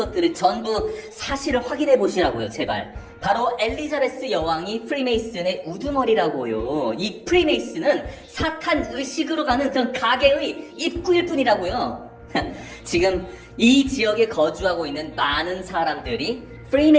전부 사실을 확인해 보시라고요. 제발. 바로 엘리자베스 여왕이 프리메이슨의 우두머리라고요. 이 프리메이슨은 사탄 의식으로 가는 그런 가게의 입구일 뿐이라고요. 지금 이 지역에 거주하고 있는 많은 사람들이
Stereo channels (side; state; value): both; identical; correlation 1.00